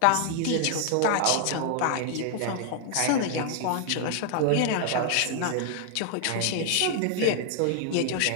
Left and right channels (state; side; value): different; both; correlation 0.00